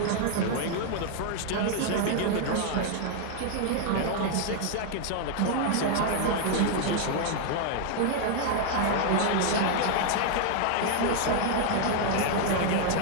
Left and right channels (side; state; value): both; different; correlation 0.00